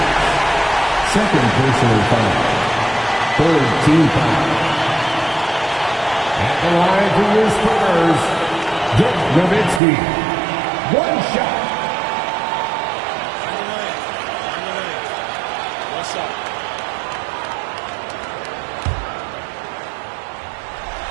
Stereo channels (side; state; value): left; drops out; at 9.8 s